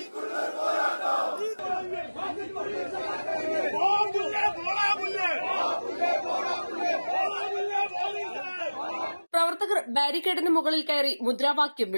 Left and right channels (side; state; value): both; inverted; correlation -1.00